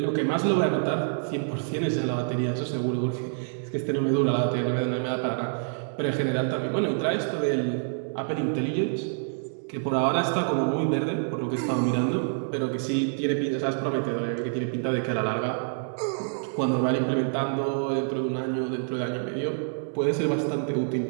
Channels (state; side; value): silent; left; digital silence